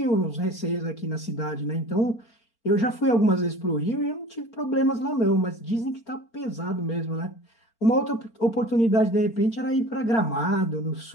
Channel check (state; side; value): late; right; 4.4 ms